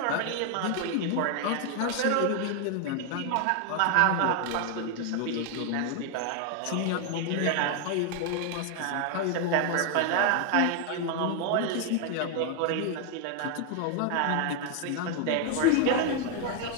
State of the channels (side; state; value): both; different; correlation 0.01